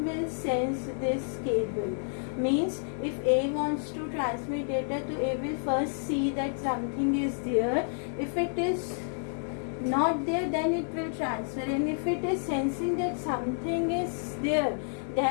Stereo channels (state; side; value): silent; right; digital silence